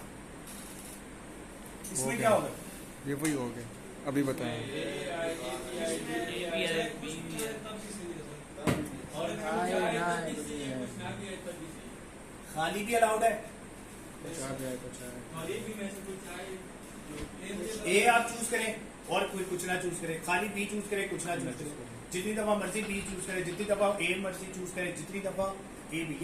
इसमें क्या होगा, ये वही हो गया, अभी बताएं। खाली भी अलाउड है, ए आप चूज करें और कोई कुछ ना चूज करें, खाली बी चूज करें, कुछ ना चूज करें, जितनी दफा मर्जी बी चूज करें, जितनी दफा ए मर्जी चूज करें, जितनी दफा ए बी,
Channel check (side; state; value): both; identical; correlation 1.00